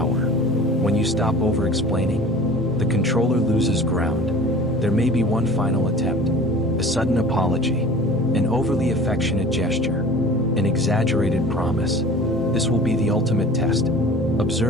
When you stop over-explaining, the controller loses ground. There may be one final attempt, a sudden apology, an overly affectionate gesture, an exaggerated promise. This will be the ultimate test.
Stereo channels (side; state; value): both; normal; correlation 0.42